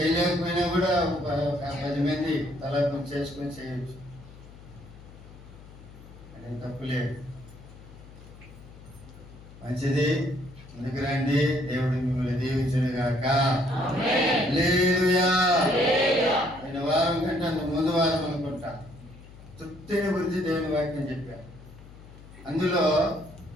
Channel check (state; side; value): noise; left; hum, 19 dB below the sound